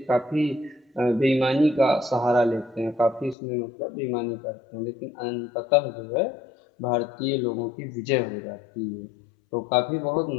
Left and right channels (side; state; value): right; drops out; at 3.4 s